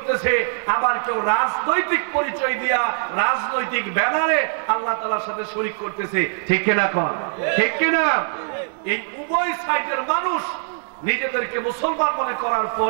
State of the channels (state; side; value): silent; left; digital silence